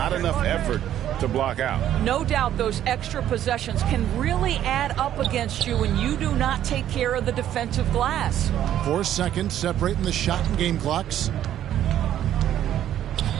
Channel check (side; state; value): left; quieter; 11.3 dB